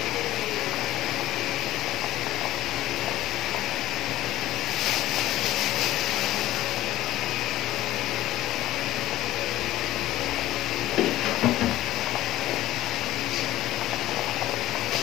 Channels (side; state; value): right; quieter; 15.1 dB